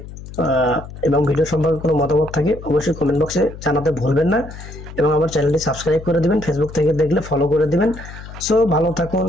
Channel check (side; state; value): left; noise; hum, 14 dB below the sound